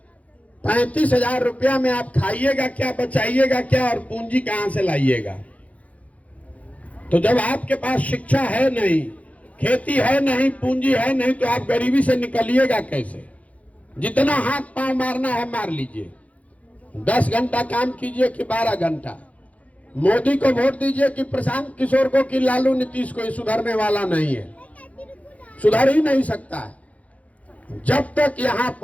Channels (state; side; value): late; right; 0.067 ms